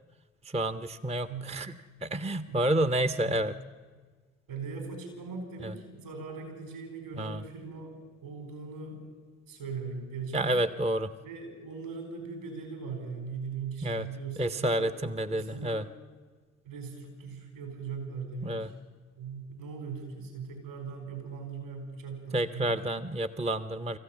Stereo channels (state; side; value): normal; both; correlation 0.50